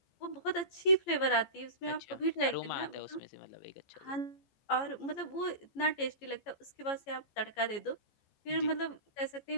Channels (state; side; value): late; right; 14 ms